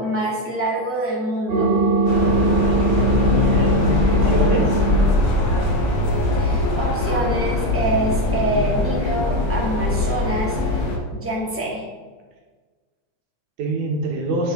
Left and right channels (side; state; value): both; normal; correlation 0.09